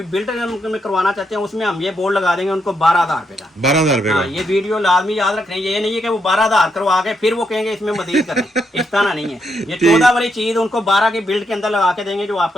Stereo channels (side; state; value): both; normal; correlation 0.79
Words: बिल्ड में करवाना चाहते हैं उसमें हम ये बोर्ड लगा देंगे उनको 12,000 रुपए का। 12,000 रुपए हाँ, का। ये वीडियो लाजमी याद रखना है, ये नहीं है कि वो 12,000 करवा के फिर वो कहेंगे इसमें मजीद करें, इस तरह नहीं है। ये 14 वाली चीज उनको 12 की बिल्ड के अंदर लगा के देंगे जो